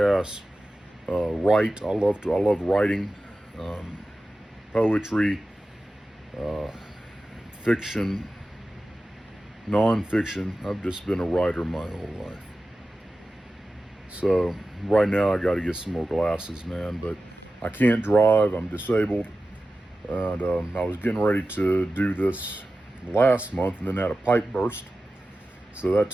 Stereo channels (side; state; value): both; normal; correlation 0.94